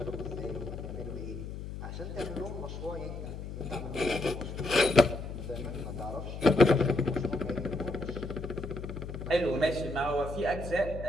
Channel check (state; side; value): noise; left; hum, 8 dB below the sound